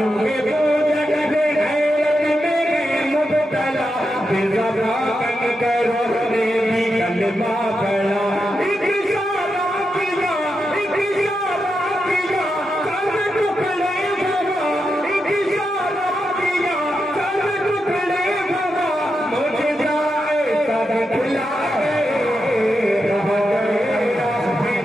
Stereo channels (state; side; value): normal; both; correlation 0.87